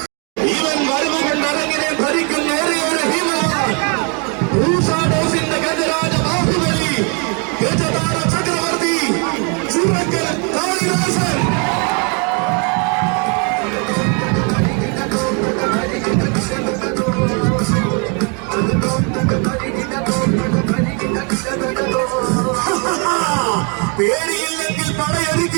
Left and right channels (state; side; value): quieter; left; 35.3 dB